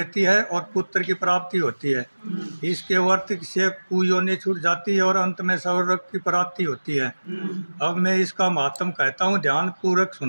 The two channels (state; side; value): inverted; both; correlation -1.00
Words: है और पुत्र की प्राप्ति होती है। इसके व्रत से कुयोनि छूट जाती है और अंत में स्वर्ग की प्राप्ति होती है। अब मैं इसका महात्म कहता हूँ, ध्यान पूर्वक